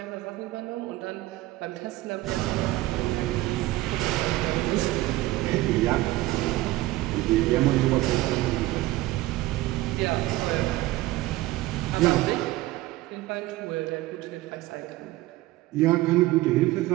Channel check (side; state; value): left; quieter; 17.7 dB